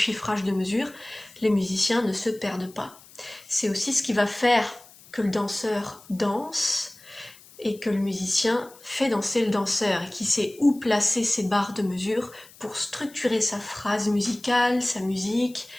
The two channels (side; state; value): left; noise; hiss, 23 dB below the sound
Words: de mesure, les musiciens ne se perdent pas. C'est aussi ce qui va faire que le danseur danse, et que le musicien fait danser le danseur, et qui sait où placer ses barres de mesure pour structurer sa phrase musicale, sa musique,